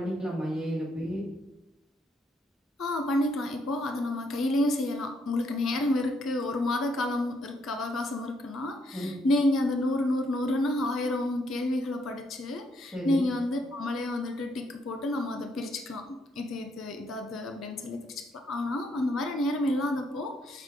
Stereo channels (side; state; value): both; normal; correlation 0.73